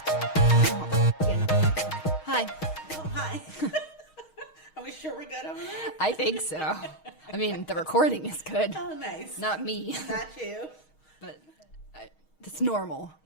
hi. Oh, hi. Are we sure we're good over there? I think so. I mean, the recording is good. Oh, nice. Not me, Not you. but it's normal.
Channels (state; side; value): late; right; 6.4 ms